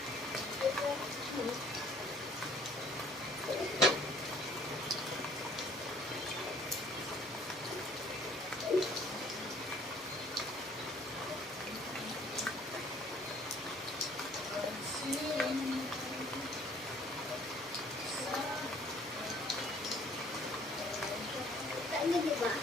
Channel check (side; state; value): both; normal; correlation 0.57